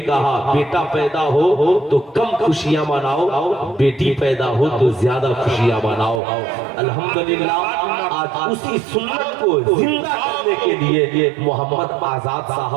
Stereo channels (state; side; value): drops out; left; at 6.2 s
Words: بیٹا پیدا ہو تو کم خوشیاں مناؤ، بیٹی پیدا ہو تو زیادہ خوشیاں مناؤ۔ الحمدللہ آج اسی سنت کو زندہ کرنے کے لیے محمد آزاد